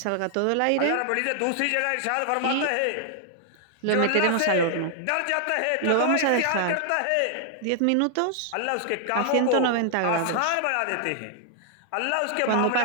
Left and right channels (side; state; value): both; different; correlation 0.00